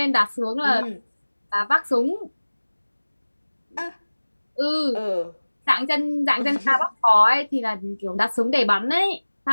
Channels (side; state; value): both; inverted; correlation -1.00